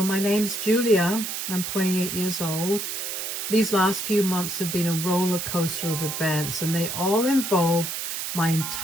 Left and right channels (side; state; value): right; noise; hiss, 4 dB below the sound